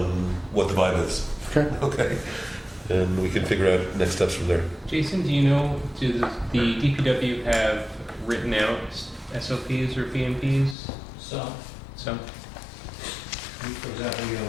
what the vibe is. Okay. Okay. And we can figure out next steps from there. Jason, do you know, does the DPW have written out SOPs or PMPs? So, Some? for example, you know,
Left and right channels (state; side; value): drops out; right; at 10.8 s